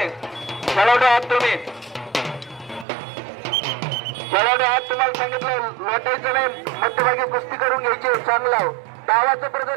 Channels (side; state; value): left; drops out; at 2.9 s